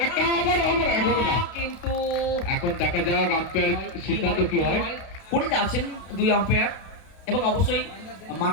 কিন্তু এখন দেখা যাক আম্পায়ার সিদ্ধান্ত কি হয়। করে যাচ্ছেন 2 আম্পায়ার এবং অবশ্যই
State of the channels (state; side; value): late; right; 32 ms